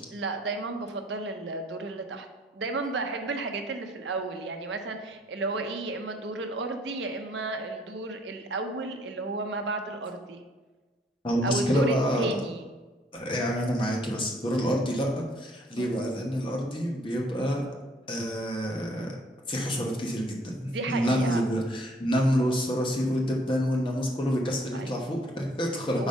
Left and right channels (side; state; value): both; normal; correlation 0.63